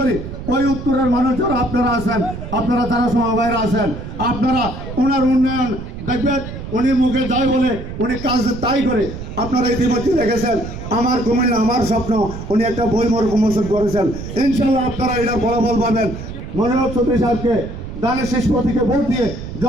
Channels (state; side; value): noise; right; rumble, 9 dB below the sound